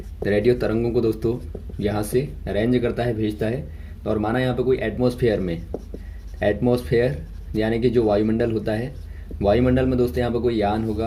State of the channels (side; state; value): both; identical; correlation 1.00